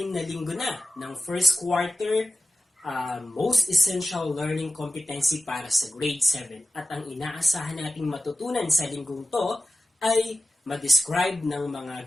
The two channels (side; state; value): both; normal; correlation 0.96